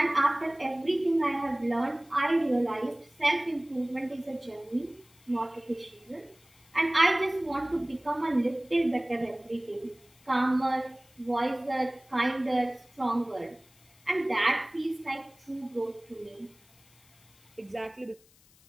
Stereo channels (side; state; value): left; noise; hiss, 29 dB below the sound